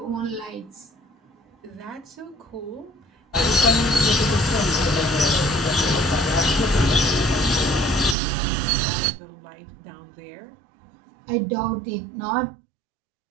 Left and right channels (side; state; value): left; drops out; at 8.2 s